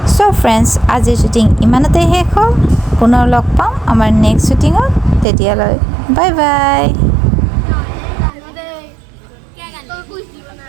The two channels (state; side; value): drops out; left; at 5.2 s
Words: সো ফ্ৰেণ্ডছ আজিৰ শ্বুটিং ইমানতে শেষ হ'ল পুনৰ লগ পাম আমাৰ নেক্সট শ্বুটিঙত তেতিয়ালৈ বাই বাই